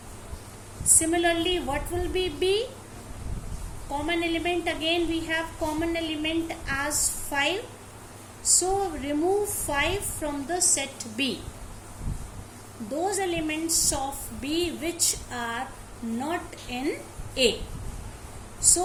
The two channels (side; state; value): both; identical; correlation 1.00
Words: Similarly, what will be B? Common element, again we have common element as 5. So remove 5 from the set B. Those elements of B which are not in A.